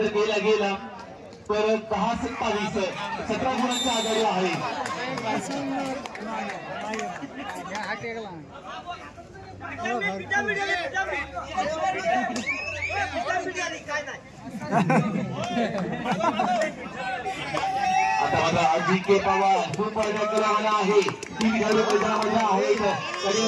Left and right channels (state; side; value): identical; both; correlation 1.00